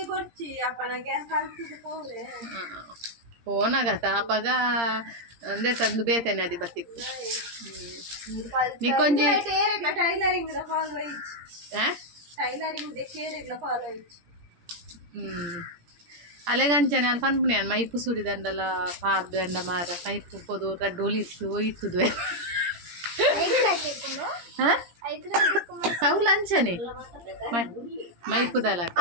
ಫೋನಾಗತ್ತ ಅಪ್ಪಗ ಅಂದೆ ತಂದು ಬೇತೇನೆ ಅದು ಬತ್ತಿತ್ತು ನಿಕ್ಕೊಂಜಿ ಅಲೆಗಂಚನೆ ಅಲ್ಲಿ ಪನ್ಪುನಿ ಅನ್ ಮೈಪು ಸುರಿದಂಡಲ ಪಾರ್ದು ಎಂಡ ಮಾರ ಮೈಪು ಪೋದು ರಡ್ಡು ಇತ್ತು ಒಯ್ತುದು ಸೌಲ್ ಅಂಚನೆ ಮೈಪುದಲ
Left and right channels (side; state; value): left; late; 17 ms